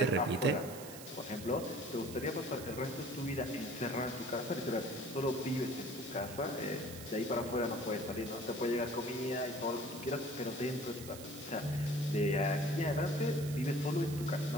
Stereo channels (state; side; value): noise; right; hiss, 13 dB below the sound